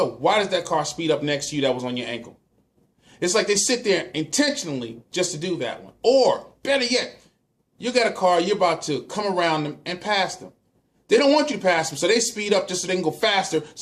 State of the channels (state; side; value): identical; both; correlation 1.00